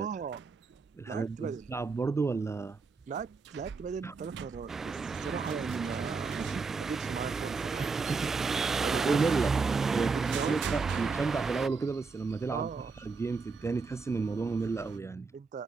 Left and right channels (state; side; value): quieter; left; 4.5 dB